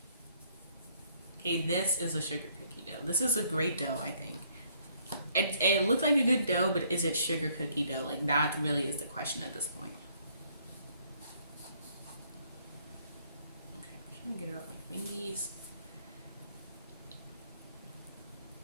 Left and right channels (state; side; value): inverted; both; correlation -0.66